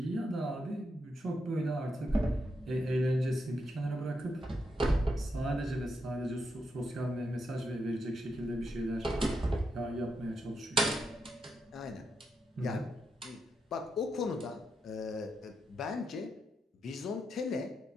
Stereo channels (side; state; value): both; normal; correlation 0.83